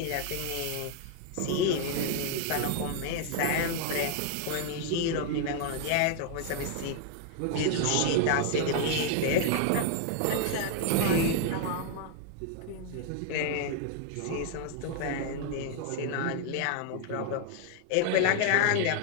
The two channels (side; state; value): both; different; correlation 0.00